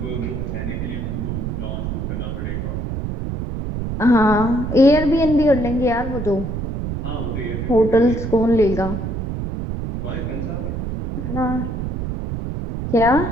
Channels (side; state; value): right; noise; rumble, 4 dB below the sound